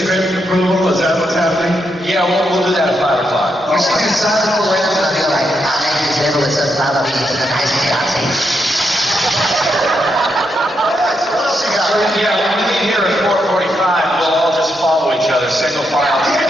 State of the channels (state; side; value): normal; both; correlation 0.81